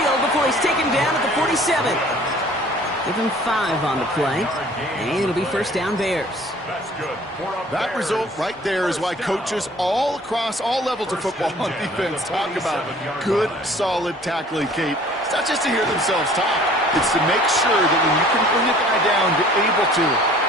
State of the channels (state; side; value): normal; both; correlation 0.51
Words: before he's taken down at the 47. Give him 5 on the play, and it'll be first down Bears. That's good. That result right there is why coaches all across all levels of football on defense talk about good, solid tackling, Kate. It's not just to hear themselves talk. It's to make sure that when you can bring a guy down, you're able to